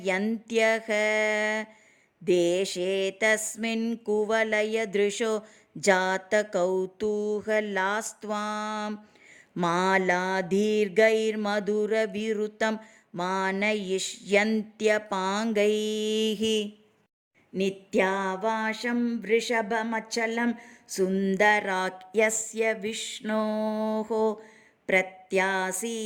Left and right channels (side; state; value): both; identical; correlation 1.00